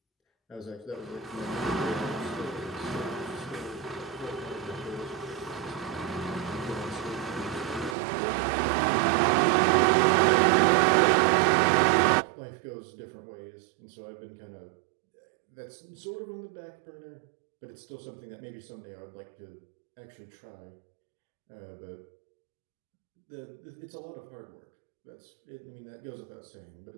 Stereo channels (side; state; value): left; drops out; at 8.0 s